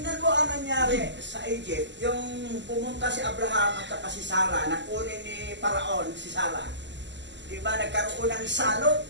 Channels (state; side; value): late; left; 0.53 ms